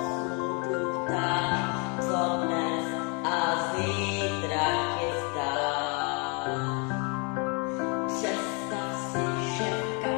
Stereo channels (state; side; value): quieter; right; 34.2 dB